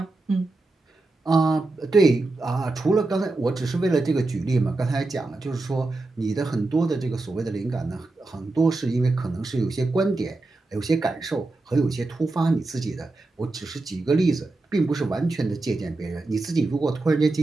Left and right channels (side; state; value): left; quieter; 3.2 dB